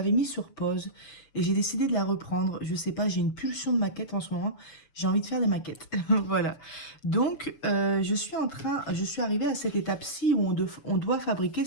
mis sur pause et j'ai décidé de la reprendre. Je sais pas, j'ai une pulsion de maquette en ce moment. J'ai envie de faire des maquettes. Voilà. Donc, je suis arrivée à cette étape-ci où on doit fabriquer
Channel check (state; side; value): late; right; 6.8 ms